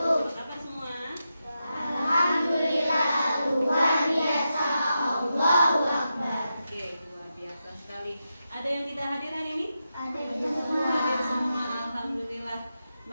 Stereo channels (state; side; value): inverted; both; correlation -0.88